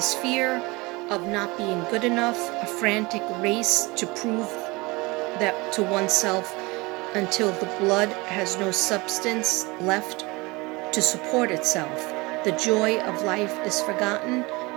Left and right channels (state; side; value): quieter; left; 24.1 dB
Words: fear of not being good enough, a frantic race to prove that to oneself until the blood has no substance left to support itself. The joy of life is forgotten